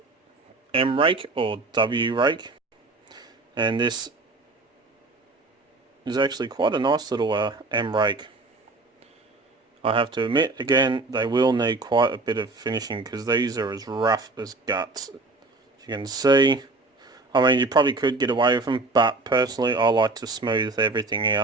M rake or W rake, and this is actually quite a nice little M rake. I have to admit, again, they will need quite a bit of finishing because these are as rough as guts. As you can see, I mean, you probably could get away with them, but personally I like to smooth everything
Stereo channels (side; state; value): left; quieter; 3.4 dB